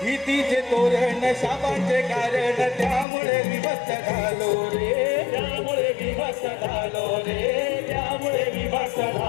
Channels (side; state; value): right; drops out; at 3.1 s